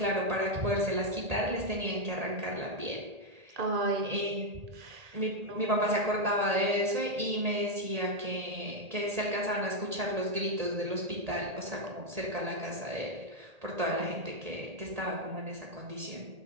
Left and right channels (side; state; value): left; late; 1.8 ms